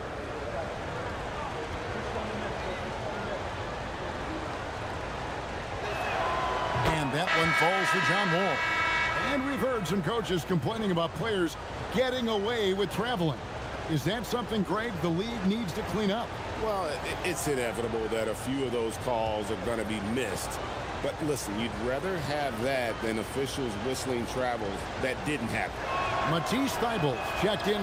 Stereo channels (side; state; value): both; identical; correlation 1.00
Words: shots. That one falls for John Wall. And we've heard some coaches complaining about players getting away with traveling. Is that something, Greg, the league needs to clean up? Well, it's inevitable that a few of those calls are going to be missed. But listen, you'd rather have that than officials whistling travels that didn't happen. Matisse Thybulle checked